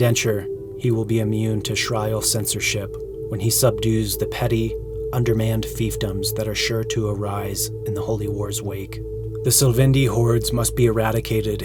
he will be immune to Shrial censorship when he subdues the petty, undermanned fiefdoms that are sure to arise in the Holy War's wake. The Sylvendi hordes must be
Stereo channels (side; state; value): both; identical; correlation 1.00